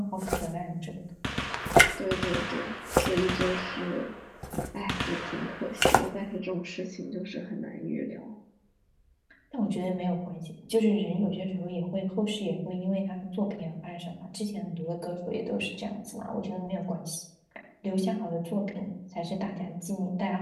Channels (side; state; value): both; identical; correlation 1.00